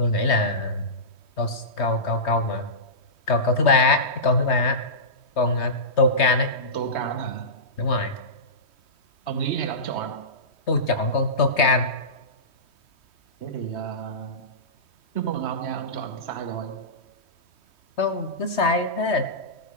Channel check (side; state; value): right; late; 3.2 ms